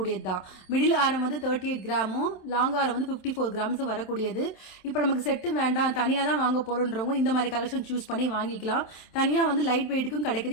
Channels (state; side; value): late; right; 27 ms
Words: தான். மிடில் ஆரம் வந்து 38 கிராமும், லாங் ஆரம் வந்து 54 கிராம்ஸும் வரக்கூடியது. இப்போ நமக்கு செட்டு வேண்டாம், தனியாக தான் வாங்க போகிறோன்றவங்க இந்த மாதிரி கலெக்ஷன் சூஸ் பண்ணி வாங்கிக்கலாம். தனியாக வந்து லைட் வெயிட்டுக்கும்